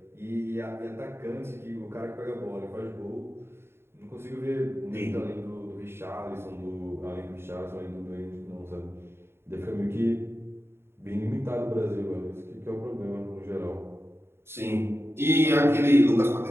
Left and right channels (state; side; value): late; left; 0.12 ms